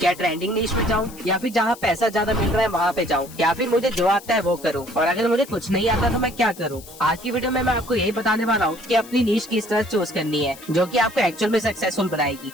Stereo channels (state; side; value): noise; left; hiss, 19 dB below the sound